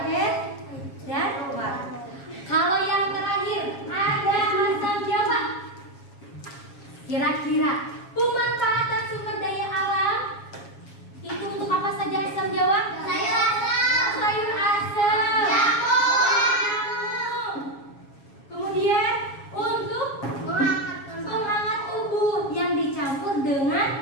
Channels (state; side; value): late; right; 7.3 ms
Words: dan warung. Kalau yang terakhir ada asam Jawa. Kira-kira pemanfaatan sumber daya alam itu untuk apa saja asam Jawa? Sayur asam. Sayur asam. Jamu. Kemudian untuk penghangat tubuh yang dicampur